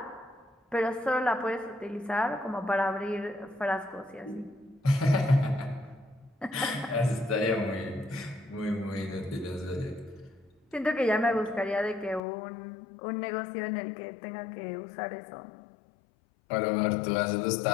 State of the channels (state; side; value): drops out; right; at 12.2 s